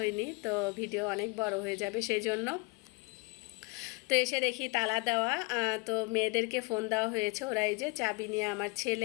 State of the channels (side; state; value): right; quieter; 27.3 dB